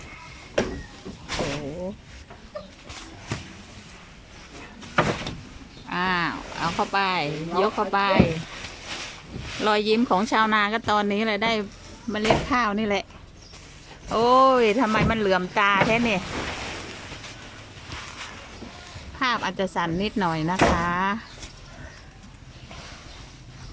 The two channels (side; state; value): both; identical; correlation 1.00